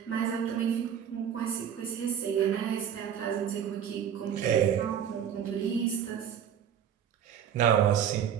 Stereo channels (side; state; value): left; quieter; 8.8 dB